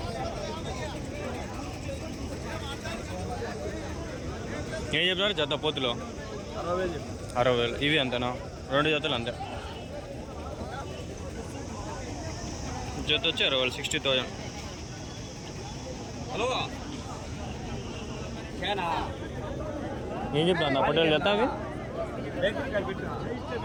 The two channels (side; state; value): both; identical; correlation 1.00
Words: ఏం చెప్తారు జత పోతులో? 60,000. ఇవి అంతేనా? 2 జతలు అంతే. జత వచ్చి 60,000 60,000. హలో ఏం చెప్తా అన్న పొట్టేలు జత అవి